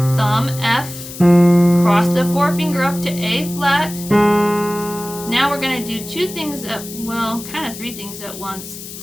F, cross the 4-finger up to A flat. Now we're going to do 3 things at once.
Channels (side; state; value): left; noise; hiss, 13 dB below the sound